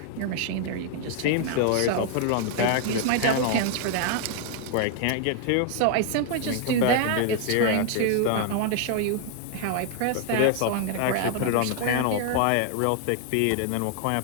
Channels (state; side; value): different; both; correlation 0.00